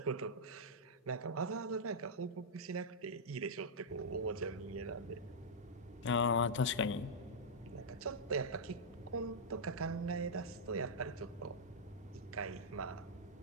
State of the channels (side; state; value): both; normal; correlation -0.08